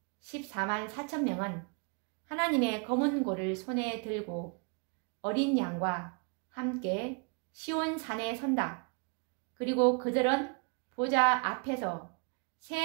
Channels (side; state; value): left; quieter; 35.3 dB